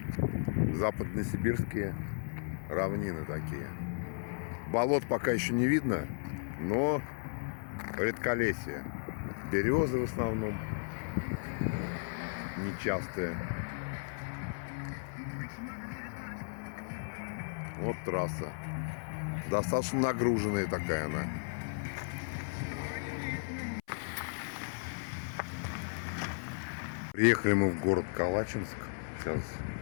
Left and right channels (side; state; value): right; silent; 54 dB below the other